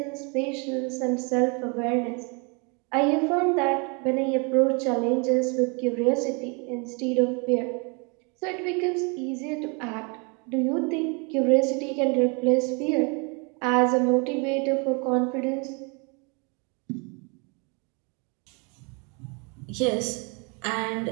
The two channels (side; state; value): left; quieter; 32.9 dB